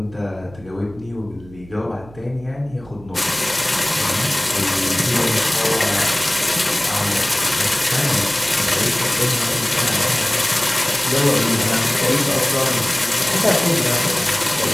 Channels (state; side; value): noise; right; hum, 21 dB below the sound